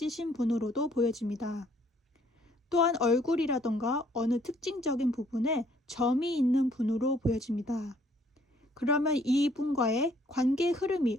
분으로도 보여집니다. 또한 얼굴이라던가 어느 특징적인 부분에 점이 있는 분으로 보여집니다. 그러면 이분과의 관계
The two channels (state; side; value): normal; both; correlation 0.63